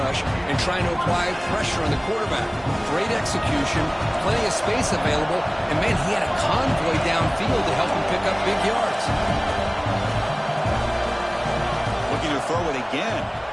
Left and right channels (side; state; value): both; identical; correlation 1.00